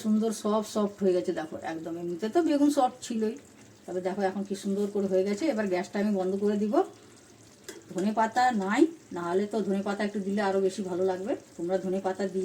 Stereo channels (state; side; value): identical; both; correlation 1.00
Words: সুন্দর সফট হয়ে গেছে দেখো একদম। এমনিতে তো বেগুন সফট ছিলই, তবে দেখো এখন কি সুন্দর করে হয়ে গেছে। এবার গ্যাসটা আমি বন্ধ করে দিব। ধনে পাতা নাই, নাহলে তো ধনে পাতা একটু দিলে আরও বেশি ভালো লাগবে। তোমরা ধনে পাতা